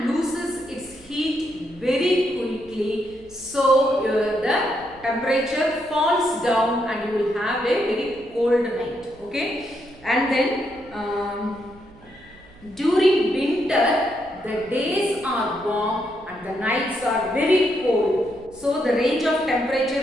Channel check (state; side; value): noise; right; hum, 25 dB below the sound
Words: loses its heat very quickly. So the temperature falls down and you will have a very cold night. Okay. And then during winter the days are warm and the nights are very cold. So the range of temperature